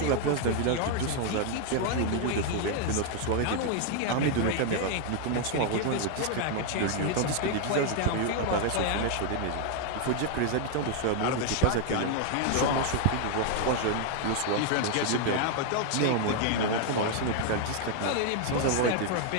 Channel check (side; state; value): both; different; correlation 0.00